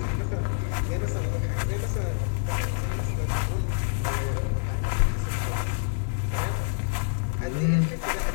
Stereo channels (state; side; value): silent; right; digital silence